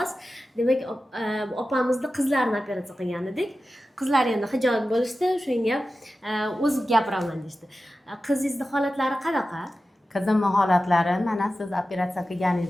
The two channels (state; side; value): normal; both; correlation 0.94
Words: Demak, opamizni qizlarini operatsiya qilgan edik. Qizlar endi hijolat bo'lishdi, shunga o'zim gapiraman deydi. Qizingizni holatlari qanaqa? Qizimni holatlari mana siz operatsiya